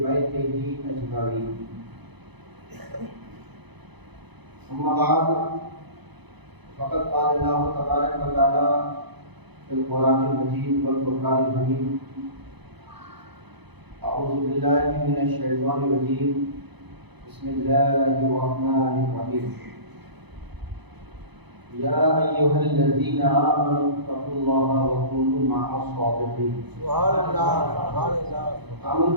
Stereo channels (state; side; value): late; left; 0.99 ms